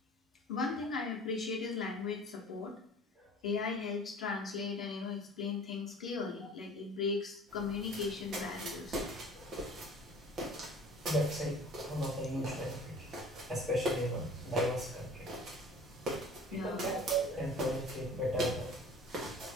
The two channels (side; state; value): both; normal; correlation 0.45